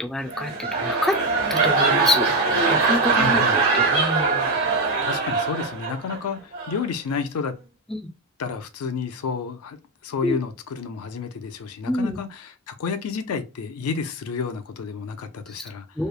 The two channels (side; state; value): both; normal; correlation 0.10